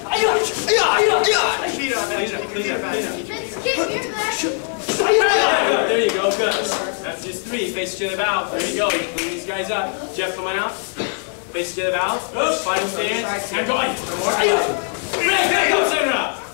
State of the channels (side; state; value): right; silent; 56 dB below the other